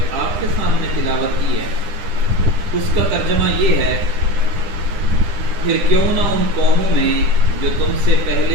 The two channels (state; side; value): late; left; 10 ms